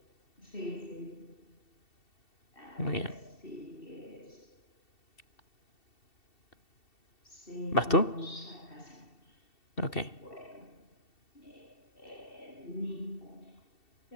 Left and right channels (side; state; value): right; late; 2.7 ms